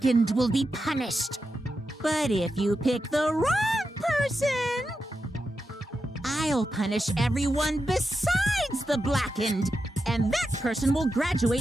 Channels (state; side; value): normal; both; correlation 0.89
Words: will be punished. But if you pick the wrong person, I'll punish everyone besides the blackened, and that person will